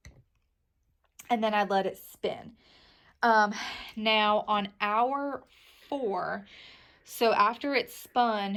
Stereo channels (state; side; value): identical; both; correlation 1.00